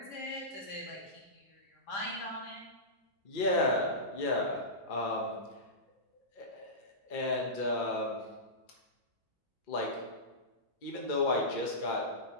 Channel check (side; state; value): both; normal; correlation -0.18